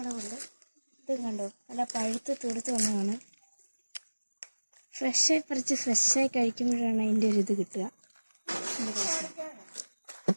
ഇത് കണ്ടോ, നല്ല പഴുത്ത് തുടുത്ത് വന്നതാണ്. ഫ്രഷായി പറിച്ച് ഫ്രഷായി കഴിക്കുമ്പോഴാണ് അതിൻ്റെ ഒരു ഇത് കിട്ടുക.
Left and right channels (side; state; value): both; inverted; correlation -1.00